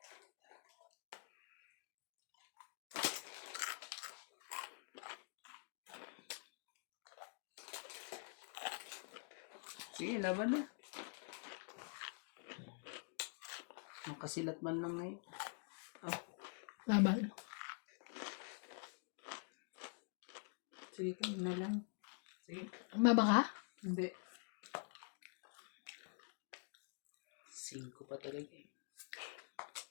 Sige, laban na. Nakasilat man lang ngayon. Laban. Sige ka na lang. Sige. Maba ka? Hindi. 5 pa talaga eh.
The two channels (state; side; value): quieter; right; 39.2 dB